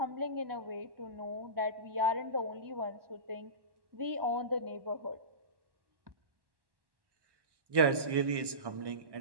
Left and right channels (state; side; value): late; left; 1.1 ms